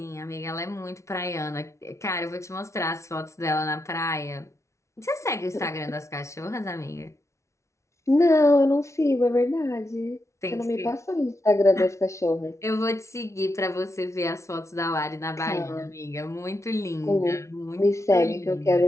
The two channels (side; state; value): right; late; 0.14 ms